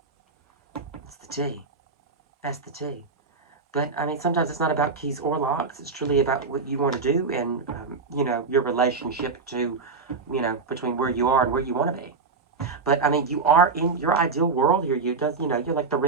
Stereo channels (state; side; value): quieter; left; 4.6 dB